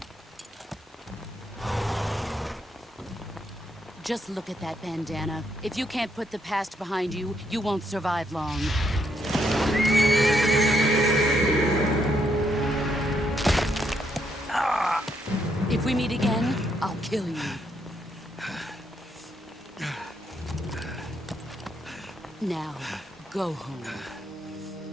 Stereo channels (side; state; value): both; normal; correlation 0.75